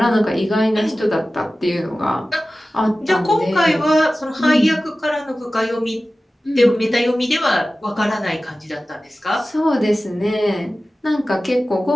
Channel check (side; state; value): both; normal; correlation 0.96